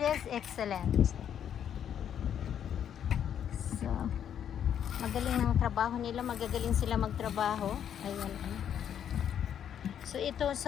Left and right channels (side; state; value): right; quieter; 9.2 dB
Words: is excellent. So magaling ng trabaho nila, magagaling sila magtrabaho. Ayan. So ito